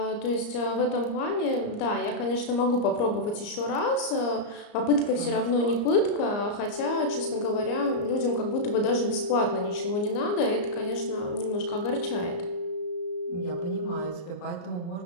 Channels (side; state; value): right; late; 34 ms